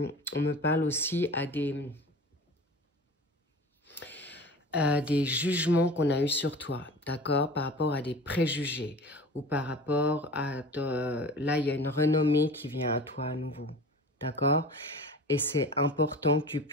on me parle aussi à des jugements qu'on a eus sur toi, d'accord, par rapport à des préjugés, ou par rapport à, là il y a une renommée qui vient à toi à nouveau, d'accord, et c'est important que tu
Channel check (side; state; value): both; normal; correlation 0.38